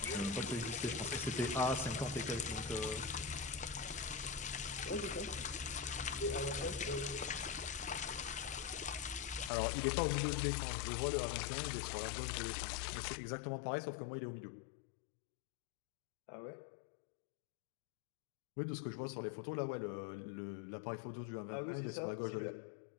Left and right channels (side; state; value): right; drops out; at 9.5 s